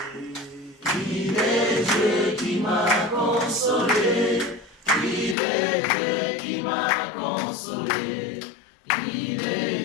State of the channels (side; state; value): right; drops out; at 5.4 s